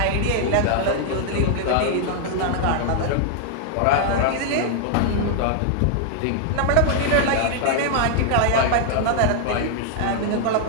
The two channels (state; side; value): different; both; correlation -0.01